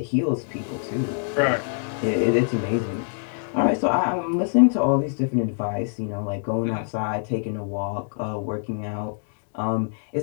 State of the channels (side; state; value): right; silent; digital silence